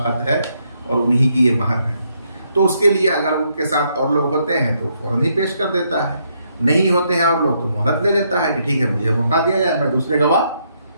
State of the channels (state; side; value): inverted; both; correlation -0.75